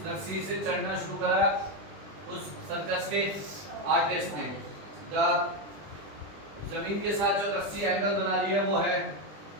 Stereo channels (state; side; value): late; left; 20 ms